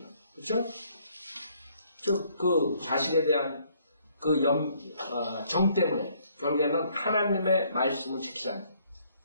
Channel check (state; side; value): inverted; both; correlation -0.66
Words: 그렇죠? 즉 그 자식에 대한 그 정 때문에 결국에는 하나님의 말씀을 지키지 않아요.